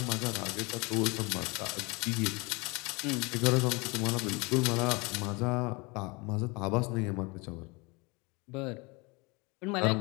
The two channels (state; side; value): quieter; right; 27.4 dB